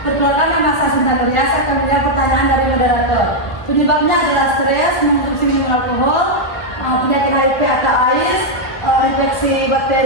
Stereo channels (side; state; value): right; late; 1.2 ms